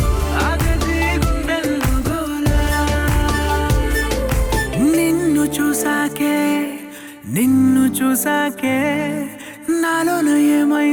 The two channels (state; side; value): identical; both; correlation 1.00